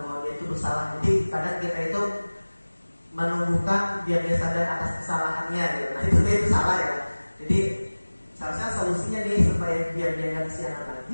bahwa dia itu bersalah. Jadi kadang kita itu menumbuhkan biar dia sadar atas kesalahannya gitu. Nah itu salah, ya. Jadi seharusnya solusinya nih supaya biar dia nggak kesiangan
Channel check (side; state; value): both; inverted; correlation -1.00